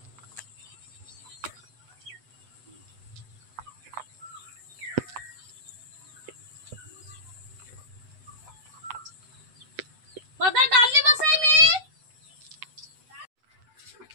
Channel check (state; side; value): late; left; 8.0 ms